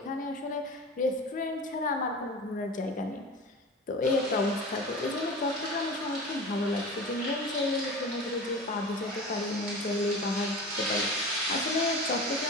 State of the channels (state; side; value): normal; both; correlation 0.33